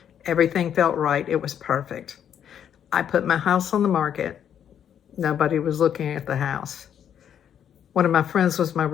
Everything felt right. It was perfect. I put my house on the market. Nobody was looking at the house. One of my friends was my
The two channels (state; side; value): quieter; right; 9.1 dB